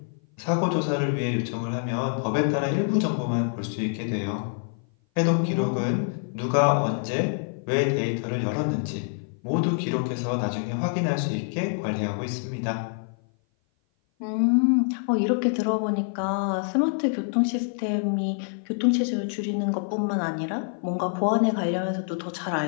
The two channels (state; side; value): silent; right; 56 dB below the other